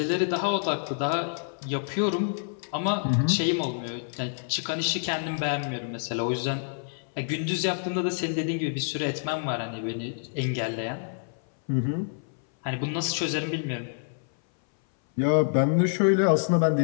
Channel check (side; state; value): right; silent; 58 dB below the other